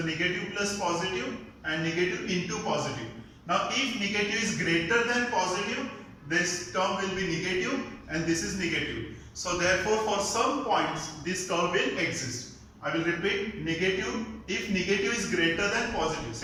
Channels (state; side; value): identical; both; correlation 1.00